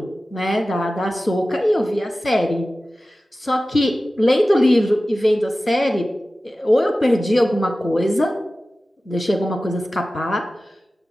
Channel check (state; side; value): normal; both; correlation 0.95